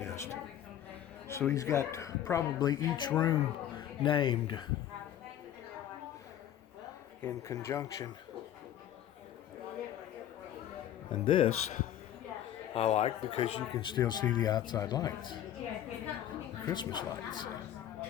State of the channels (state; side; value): quieter; right; 11.2 dB